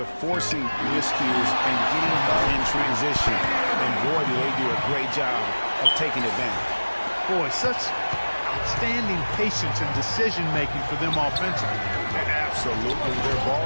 forcing miscues and getting in transition. And boy, do they do a great job of taking advantage. Boy, such outstanding patience and decision-making for them offensively. Absolutely. Their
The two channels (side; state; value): both; inverted; correlation -1.00